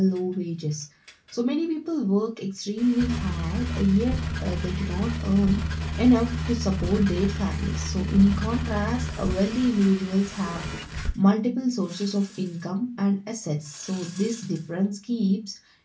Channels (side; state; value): both; identical; correlation 1.00